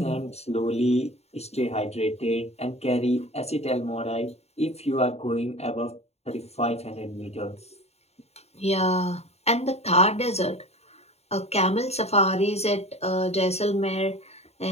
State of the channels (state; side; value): late; right; 0.31 ms